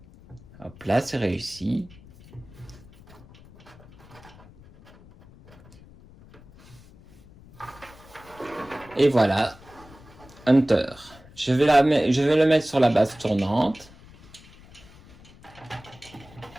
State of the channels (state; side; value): noise; left; rumble, 23 dB below the sound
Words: Hop là, c'est réussi. Et voilà, Hunter. Je vais le mettre sur la base tournante.